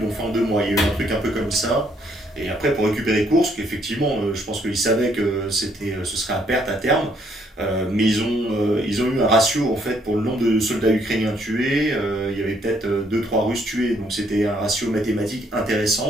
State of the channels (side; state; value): both; normal; correlation 0.68